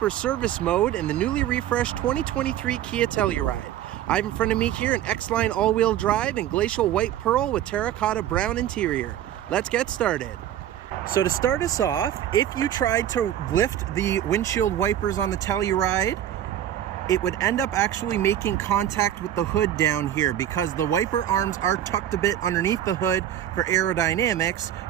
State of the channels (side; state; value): left; quieter; 11.3 dB